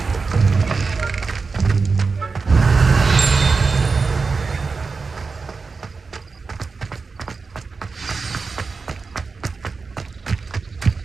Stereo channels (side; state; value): left; quieter; 4.5 dB